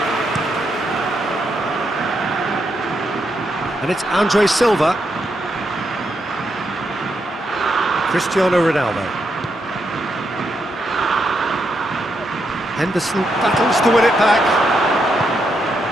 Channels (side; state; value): both; normal; correlation 0.81